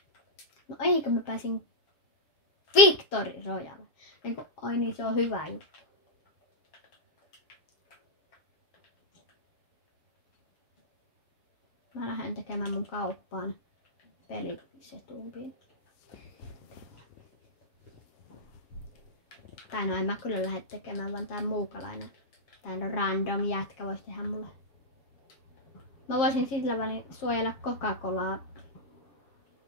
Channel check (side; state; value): right; late; 7.4 ms